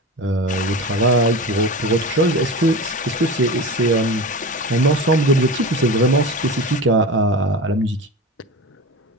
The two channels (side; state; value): both; normal; correlation 0.29